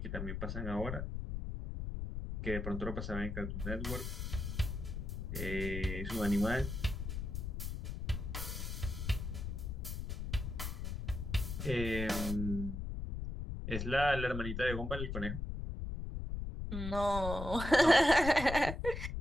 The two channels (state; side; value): noise; left; rumble, 4 dB below the sound